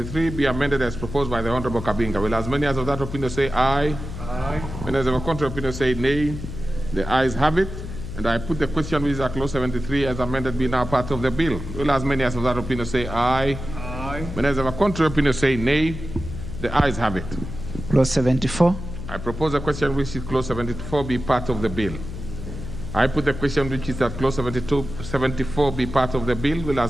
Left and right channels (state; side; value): noise; left; hum, 9 dB below the sound